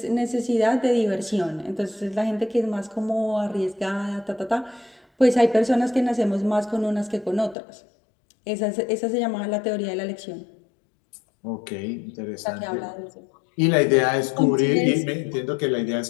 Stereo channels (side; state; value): right; drops out; at 7.6 s